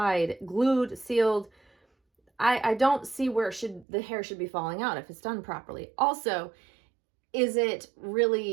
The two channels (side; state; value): left; drops out; at 3.9 s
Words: glued, sealed, I don't see where the hair should be falling out if it's done properly. Also, is it